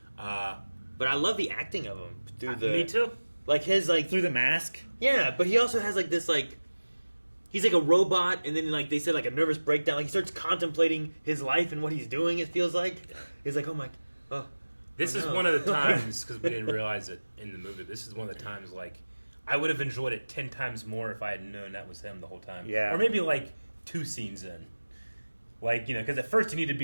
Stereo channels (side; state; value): both; inverted; correlation -1.00